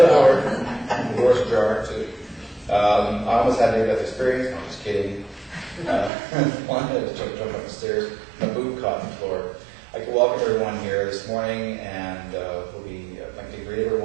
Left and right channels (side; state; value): left; drops out; at 6.1 s